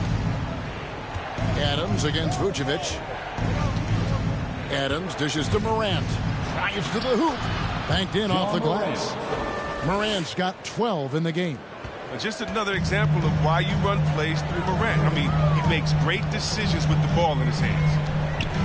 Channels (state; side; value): identical; both; correlation 1.00